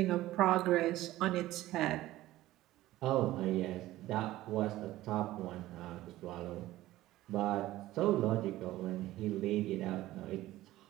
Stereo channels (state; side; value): quieter; left; 16.0 dB